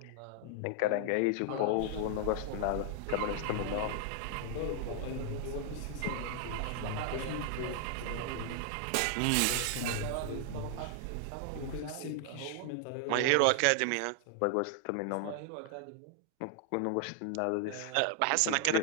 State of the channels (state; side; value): different; both; correlation 0.00